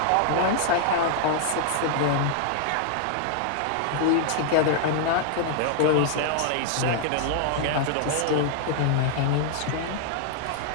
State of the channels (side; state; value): both; different; correlation 0.00